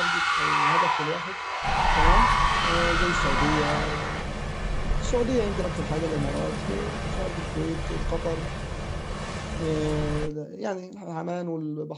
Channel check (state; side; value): identical; both; correlation 1.00